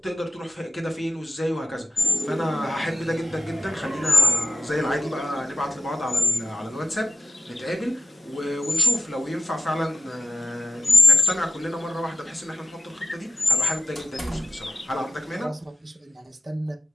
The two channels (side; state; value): both; normal; correlation 0.96